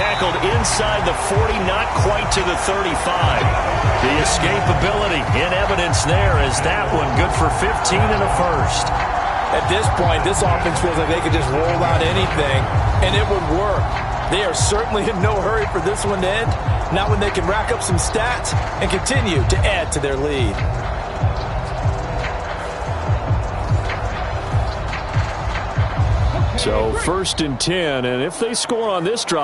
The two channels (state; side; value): identical; both; correlation 1.00